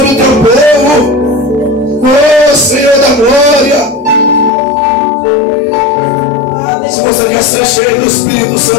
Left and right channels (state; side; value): drops out; right; at 4.5 s